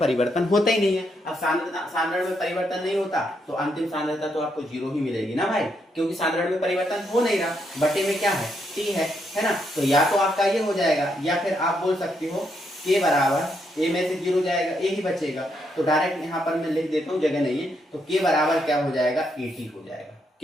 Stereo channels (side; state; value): both; normal; correlation 0.78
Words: होता ही नहीं है। अब सांद्रण में परिवर्तन नहीं होता तो अंतिम सांद्रता तो आपको 0 ही मिलेगी ना भाई, क्योंकि सांद्रण में परिवर्तन हो नहीं रहा। बटे में क्या है? T है ना? तो या तो आपका ये हो जाएगा, या फिर आप बोल सकते हो K बराबर A में से 0 जाएगा, A ही बचेगा। तो डायरेक्ट यहाँ पर मैं लिख देता हूँ, जगह नहीं है, तो K बराबर क्या हो जाएगा? AT हो जाएगा।